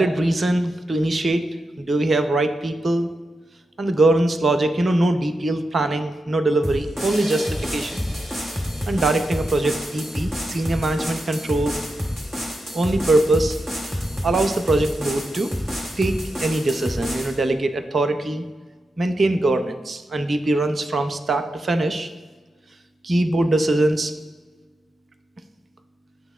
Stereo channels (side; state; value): both; normal; correlation 0.88